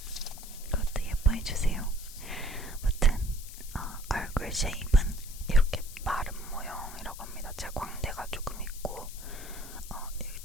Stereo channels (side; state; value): left; noise; hiss, 14 dB below the sound